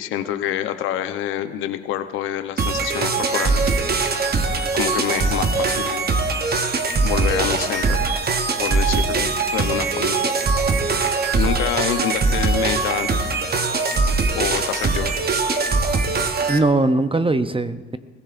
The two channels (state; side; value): normal; both; correlation 0.38